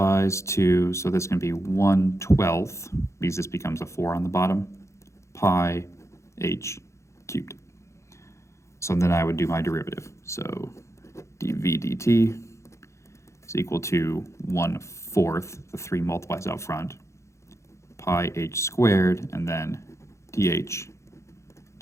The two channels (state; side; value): late; right; 0.14 ms